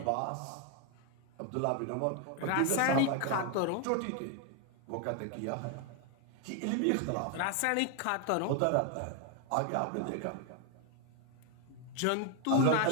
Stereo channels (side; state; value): both; different; correlation 0.01